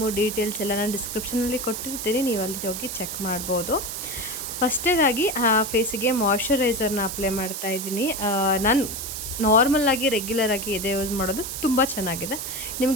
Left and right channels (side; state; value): right; noise; hiss, 6 dB below the sound